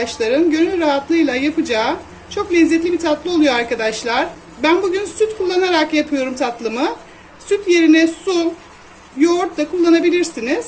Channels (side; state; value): both; identical; correlation 1.00